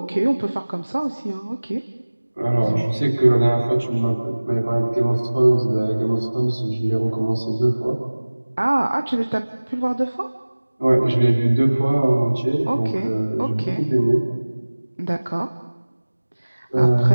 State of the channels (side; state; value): both; inverted; correlation -1.00